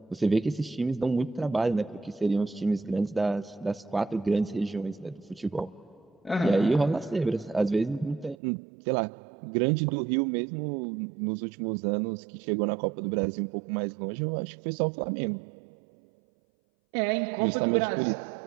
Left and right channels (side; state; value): left; drops out; at 8.3 s